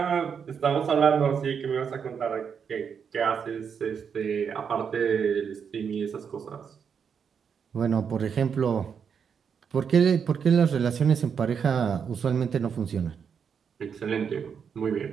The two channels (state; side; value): quieter; left; 6.9 dB